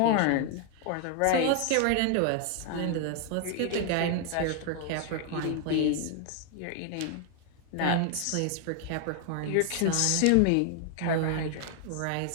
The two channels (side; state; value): both; different; correlation 0.00